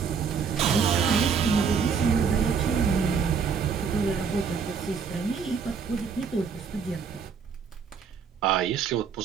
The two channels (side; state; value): left; quieter; 6.2 dB